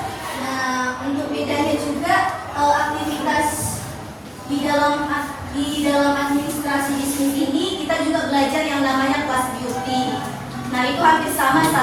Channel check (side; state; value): both; identical; correlation 1.00